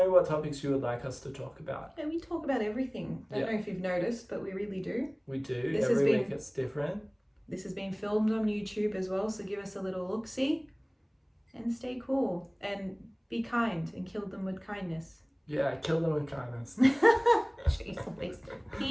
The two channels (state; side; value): identical; both; correlation 1.00